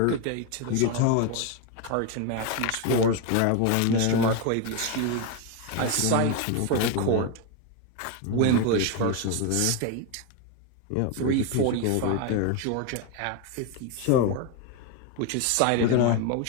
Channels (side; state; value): both; different; correlation 0.02